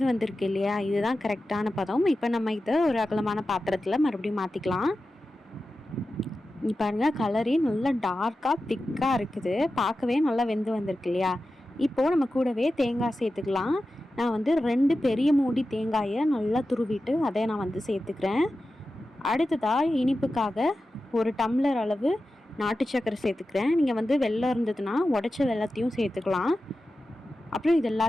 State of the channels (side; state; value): both; normal; correlation 0.93